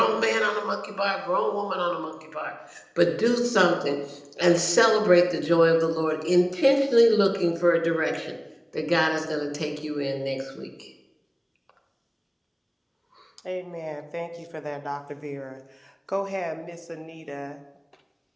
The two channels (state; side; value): identical; both; correlation 1.00